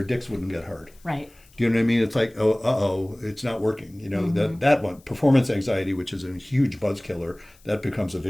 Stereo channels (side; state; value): left; noise; hiss, 29 dB below the sound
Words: dicks wouldn't get hard. Right. Do you know what I mean? It's like, it's not working. That one, performance anxiety, which is a huge buzz killer, that becomes a